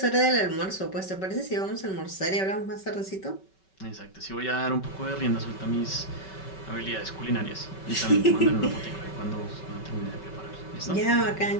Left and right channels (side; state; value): right; late; 5.3 ms